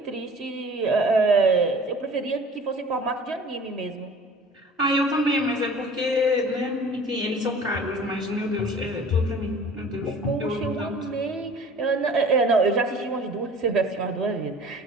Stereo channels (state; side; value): normal; both; correlation 0.46